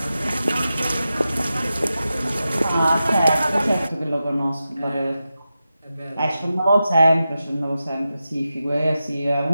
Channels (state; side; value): inverted; both; correlation -0.91